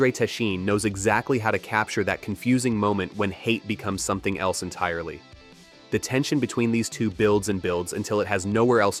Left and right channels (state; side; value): identical; both; correlation 1.00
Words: Techin knows exactly how to capture that confusing moment when hate becomes something else entirely. The tension between these two builds and builds until it has nowhere else